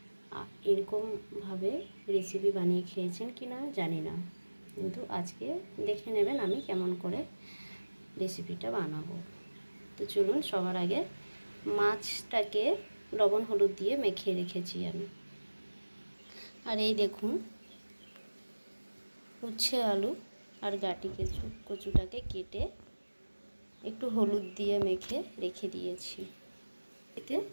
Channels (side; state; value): both; inverted; correlation -1.00